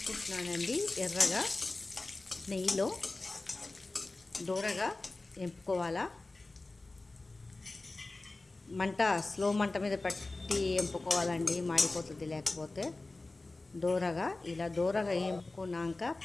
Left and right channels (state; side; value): quieter; right; 3.2 dB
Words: ఎర్రగా నెయ్యిలో దూరగా వేపుకోవాలా. మంట స్లో మంట మీద పెట్టి వేపుకోవాలండి, మాడిపోతుంది లేకపోతే. ఇలా దూరగా వేపుకున్నాక